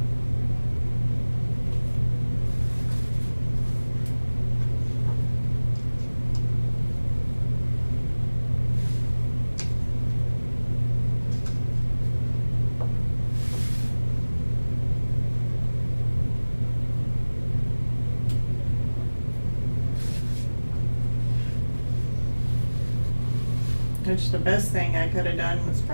which the best thing I could have done was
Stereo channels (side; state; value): both; inverted; correlation -1.00